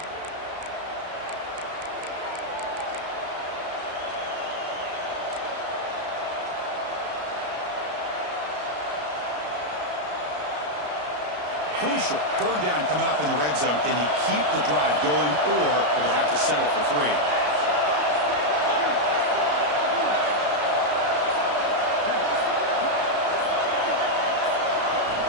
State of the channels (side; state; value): left; late; 33 ms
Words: Crucial. Third down coming up in the red zone. Can he keep the drive going, or will they have to settle for 3?